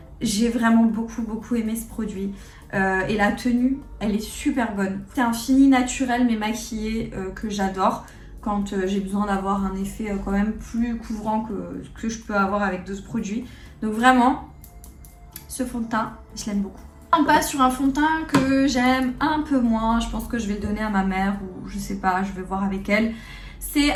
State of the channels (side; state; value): both; identical; correlation 1.00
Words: J'ai vraiment beaucoup aimé ce produit et la tenue elle est super bonne. C'est un fini naturel mais maquillé que j'adore quand j'ai besoin d'avoir un effet quand même plus couvrant que je peux avoir avec d'autres produits. Donc vraiment ce fond de teint je l'aime beaucoup. On passe sur un fond de teint que j'aime un peu moins. Je pense que je vais le donner à ma mère ou je sais pas, je vais voir avec elle. C'est